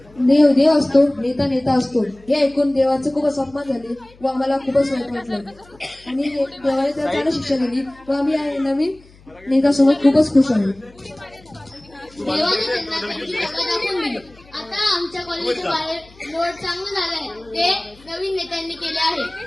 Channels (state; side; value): noise; left; hum, 26 dB below the sound